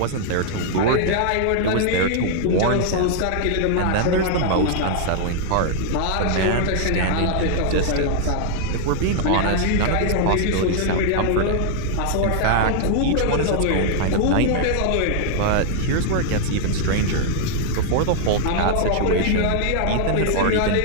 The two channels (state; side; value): different; both; correlation 0.00